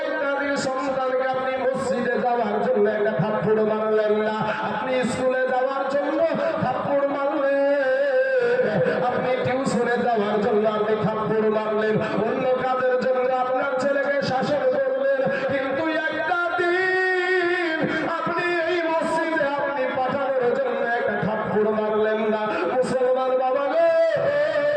একটা দিন সন্তানকে আপনি মসজিদে যাওয়ার জন্য একটা থাপ্পড় মারলেন না, আপনি স্কুলে যাওয়ার জন্য থাপ্পড় মারলেন, আপনি টিউশনে যাওয়ার জন্য আপনি থাপ্পড় মারলেন, অন্য কাজের জন্য আপনার ছেলেকে শাসন করলেন, কিন্তু একটা দিন আপনি এই মসজিদে আপনি পাঠানোর জন্য একটা থাপ্পড় মারলেন না। মুসলমান বাবা গো,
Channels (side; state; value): both; identical; correlation 1.00